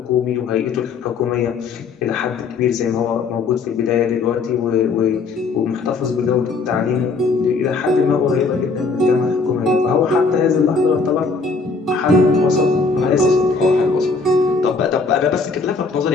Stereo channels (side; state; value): right; quieter; 4.3 dB